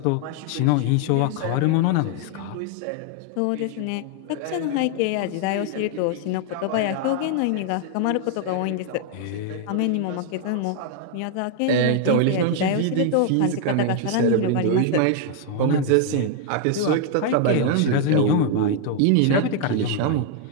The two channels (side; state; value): both; different; correlation 0.00